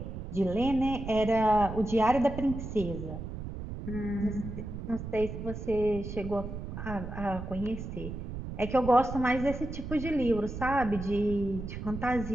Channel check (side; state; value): right; noise; rumble, 8 dB below the sound